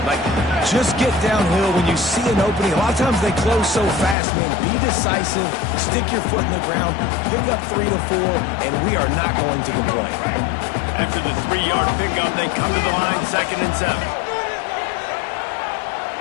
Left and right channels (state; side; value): drops out; right; at 4.2 s